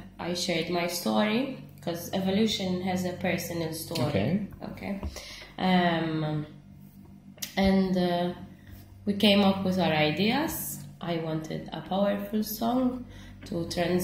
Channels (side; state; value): both; identical; correlation 1.00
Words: I shared my story, because Evolution has a personal story. Okay. And we came up with our ideas. I wanted a powerful song to